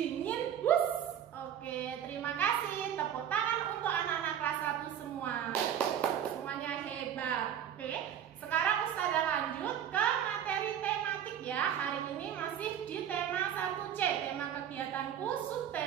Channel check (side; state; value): left; quieter; 9.6 dB